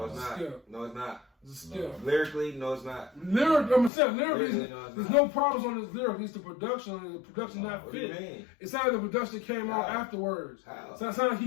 it's not. No, it's not. It's a skip. Lyrically, no, it's not. Lyrically, there's no problems on this lyric. It's the production. The production not what fit. Do you mean? It sounded like the production came out afterwards. How? So it sounded like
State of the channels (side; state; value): right; drops out; at 3.9 s